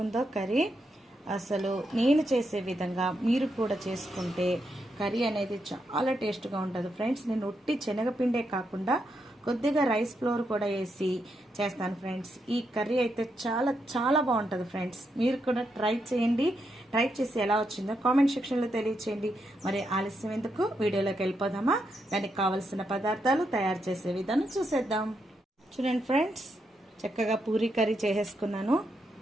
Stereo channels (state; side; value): normal; both; correlation 0.82